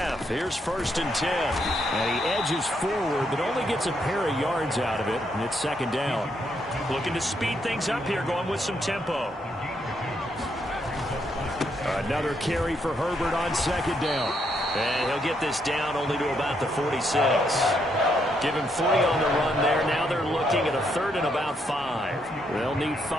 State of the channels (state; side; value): normal; both; correlation 0.76